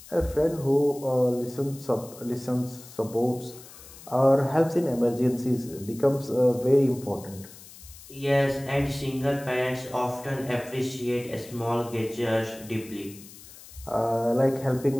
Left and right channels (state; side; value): noise; left; hiss, 19 dB below the sound